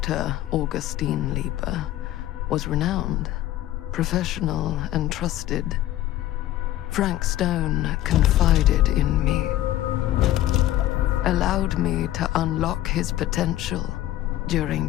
Augustine Lieber was renowned, professional, and trusted. Frank Stone confided in me, allowed me to unlock his potential during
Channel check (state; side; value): quieter; right; 14.0 dB